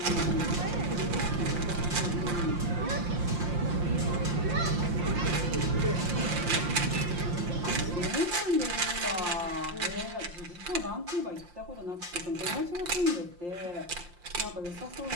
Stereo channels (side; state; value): left; late; 5.7 ms